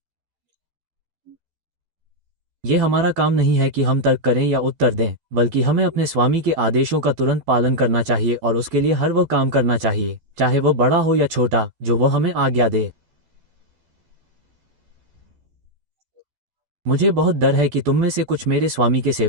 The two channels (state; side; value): late; left; 12 ms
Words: ये हमारा काम नहीं है कि हम तर्क करें या उत्तर दें, बल्कि हमें अपने स्वामी के आदेशों का तुरंत पालन करना चाहिए और उसके लिए हर वह काम करना चाहिए, चाहे वह बड़ा हो या छोटा, जो वह हमें आज्ञा दे। मुझे बहुत डर है कि तुम में से कुछ मेरे स्वामी के